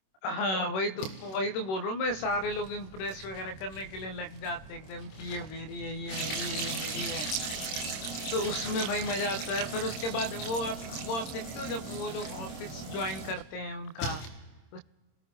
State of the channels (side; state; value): right; late; 26 ms